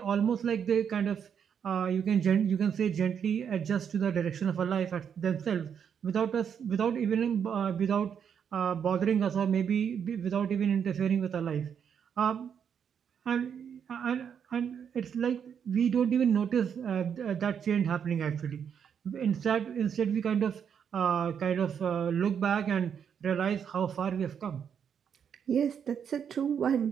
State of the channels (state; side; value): quieter; left; 7.7 dB